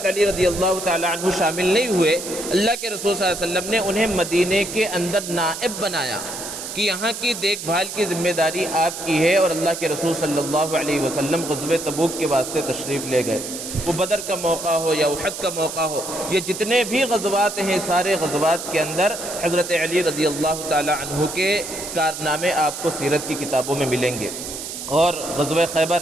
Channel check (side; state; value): right; noise; hiss, 8 dB below the sound